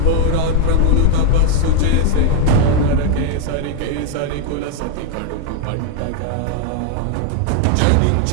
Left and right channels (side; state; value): both; different; correlation 0.01